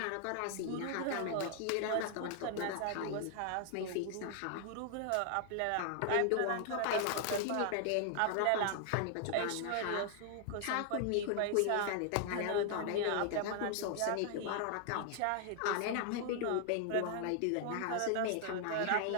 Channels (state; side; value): different; both; correlation 0.00